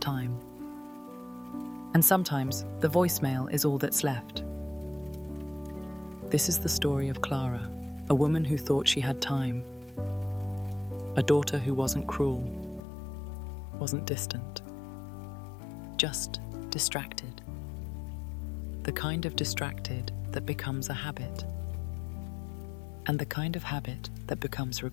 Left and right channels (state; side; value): drops out; right; at 12.8 s